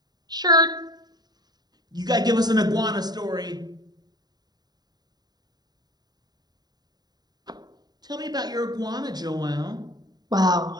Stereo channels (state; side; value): late; left; 0.20 ms